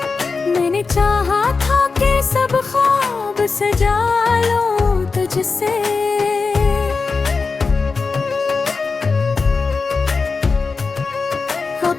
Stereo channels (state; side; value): quieter; right; 4.5 dB